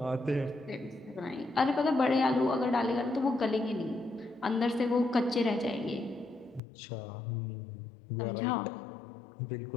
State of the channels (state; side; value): drops out; right; at 6.6 s